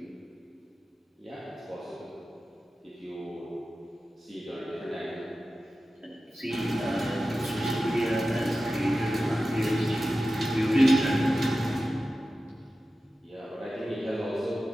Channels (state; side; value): normal; both; correlation 0.94